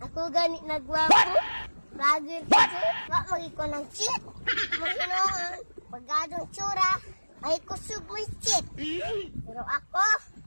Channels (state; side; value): inverted; both; correlation -1.00